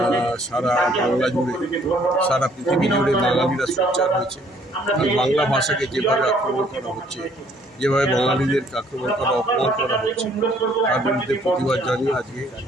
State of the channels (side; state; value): both; normal; correlation 0.62